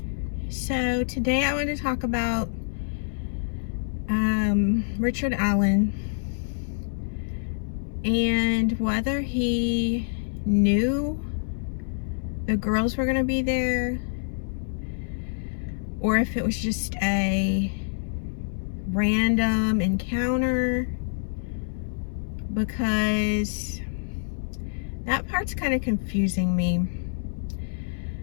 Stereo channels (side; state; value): right; silent; digital silence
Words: so today I want to talk about Richard Allen and whether he knew the girls were going to be there or if it was just a random encounter, because that part's kind of confusing me.